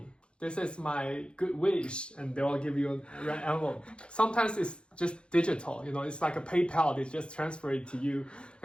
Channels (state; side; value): late; right; 0.056 ms